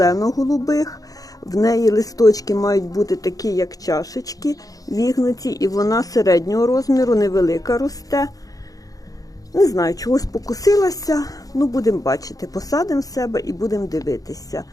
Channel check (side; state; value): right; late; 0.17 ms